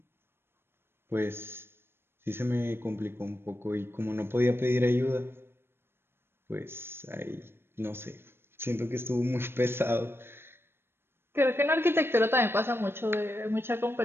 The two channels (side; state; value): left; late; 0.11 ms